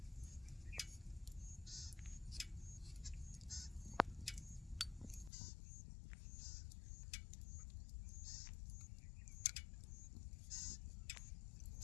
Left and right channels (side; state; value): right; drops out; at 5.3 s